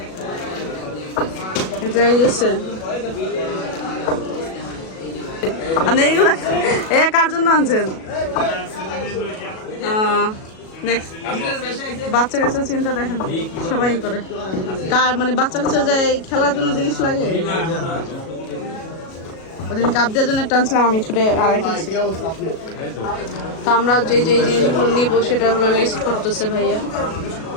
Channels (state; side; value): late; right; 37 ms